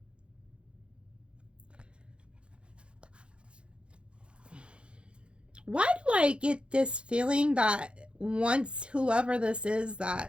Why do I get this feeling that once whoever this is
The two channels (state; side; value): late; left; 0.057 ms